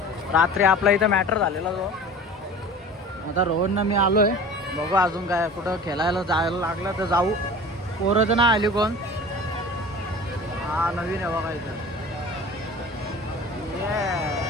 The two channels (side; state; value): both; normal; correlation 0.39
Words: रात्री आपला इथं मॅटर झालेला जो आता रोहननं मी आलोय बघू अजून काय कुठं खेळायला जायला लागलं तर जाऊ पोरं तर नाही आली कोण हा नवीन आहे बघा इथं